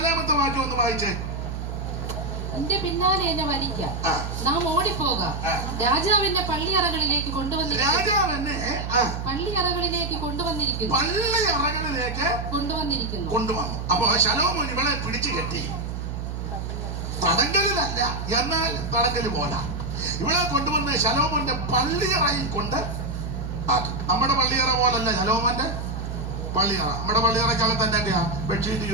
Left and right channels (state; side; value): noise; right; hum, 5 dB below the sound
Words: വാക്യം ഒന്ന് വായിച്ചേ. നിന്റെ പിന്നാലെ എന്നെ വലിക്കാം. ആ. നാം ഓടിപ്പോകാം. ആ. രാജാവിന്റെ പള്ളിയറകളിലേക്ക് കൊണ്ടുവന്നിരിക്കുന്നു. രാജാവ് എന്നെ പള്ളിയറകളിലേക്ക് കൊണ്ടുവന്നിരിക്കുന്നു. പള്ളിയറകളിലേക്ക് കൊണ്ടുവന്നു. അപ്പൊ ശലോമോൻ ഇവളെ പിടിച്ചു കെട്ടി. തടങ്കലിലല്ല, എന്നാൽ തടങ്കല് പോലെ ഇവളെ കൊണ്ടുവന്ന് ശലോമോന്റെ പള്ളിയറയിൽ കൊണ്ട് ആക്കി. നമ്മുടെ പള്ളിയറ പോലല്ല ശലോമോന്റെ പള്ളിയറ. നമ്മുടെ പള്ളിയറയ്ക്കകത്ത് എന്തൊക്കെയാ ബെഡ്ഷീറ്റ്